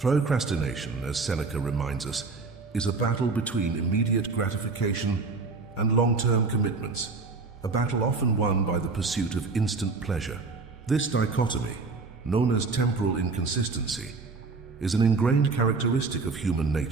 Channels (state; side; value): quieter; left; 4.1 dB